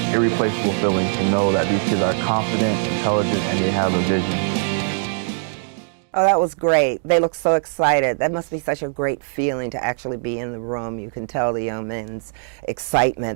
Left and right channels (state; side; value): silent; left; 62 dB below the other